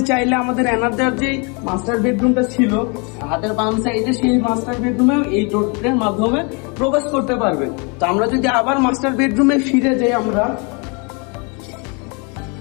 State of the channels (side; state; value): right; quieter; 32.6 dB